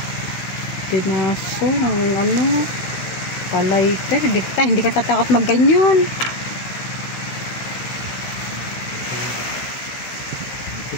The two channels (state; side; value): late; right; 17 ms